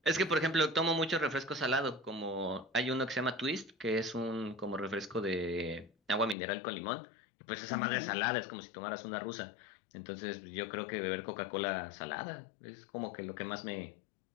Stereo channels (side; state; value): right; drops out; at 6.4 s